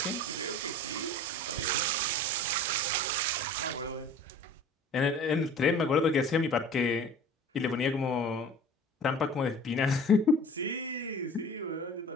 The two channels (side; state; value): both; normal; correlation 0.42